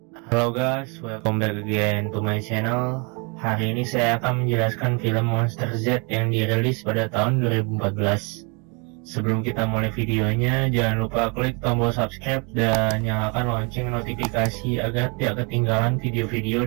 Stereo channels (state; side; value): quieter; left; 33.0 dB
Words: Halo guys, welcome back again to my channel. Hari ini saya akan menjelaskan film Monster Z yang dirilis pada tahun 2014. Sebelum kita mulai videonya, jangan lupa klik tombol subscribe dan nyalakan lonceng notifikasi agar tidak ketinggalan video-video